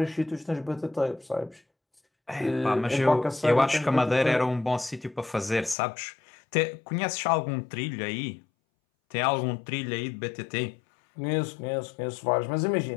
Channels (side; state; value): right; drops out; at 5.8 s